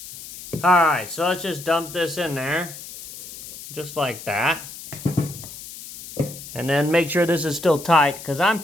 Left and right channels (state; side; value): noise; left; hiss, 13 dB below the sound